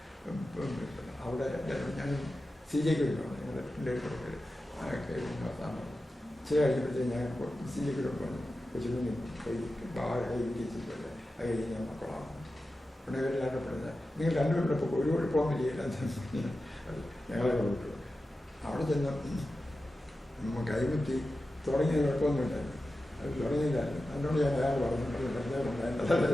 അവിടെ ഞാൻ CJക്ക് വിളിക്കണം. ഞങ്ങളുടെ പിള്ളേർ പേര് ചില കഴിഞ്ഞപ്പോഴത്തേക്ക് ഞാൻ CJക്ക് പറഞ്ഞു. കൊച്ചുകുഞ്ഞി കൈ വിജയിച്ചിട്ടുണ്ട്. അത് കഴിഞ്ഞ് ഞാൻ മക്കളാണ്. ഉടനെ ഇവരെല്ലാം പറഞ്ഞത് നിങ്ങൾ രണ്ടുപേരുടെ ഇപ്പോൾ ഒരു കുഴപ്പമൊന്നുമില്ല ഞങ്ങളെ വിട്ടു. അവിടെ ചെന്ന് കൈമുറ്റി തുടങ്ങിയ കുഴപ്പമൊന്നുമില്ലായിരുന്നു. അത് തുടങ്ങിയില്ലായിരുന്നു. അതിനോട് ഞാൻ അയാൾ പറഞ്ഞു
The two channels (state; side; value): normal; both; correlation 0.93